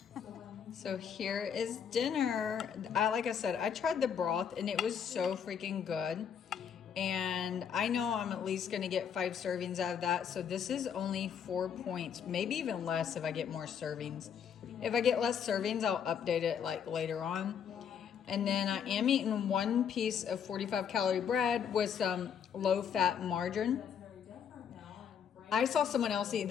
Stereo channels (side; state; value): right; quieter; 7.8 dB